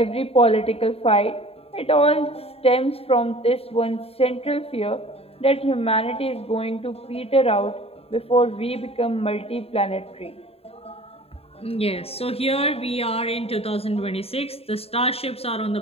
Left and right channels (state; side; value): late; right; 0.29 ms